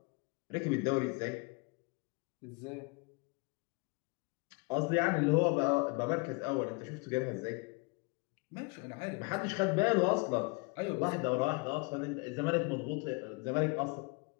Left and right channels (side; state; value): right; quieter; 29.9 dB